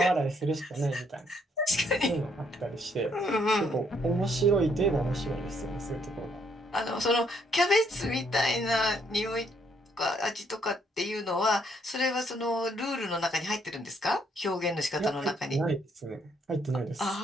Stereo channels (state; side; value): normal; both; correlation 0.70